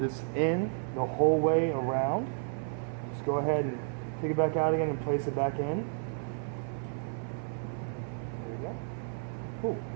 it's in the whole way around. Just go ahead and take it back out again and place it back in. There we go. Cool.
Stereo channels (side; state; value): left; silent; 56 dB below the other